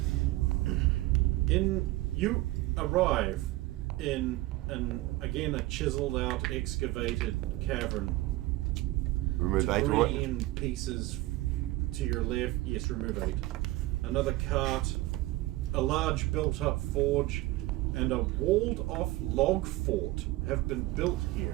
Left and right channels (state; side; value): quieter; left; 18.6 dB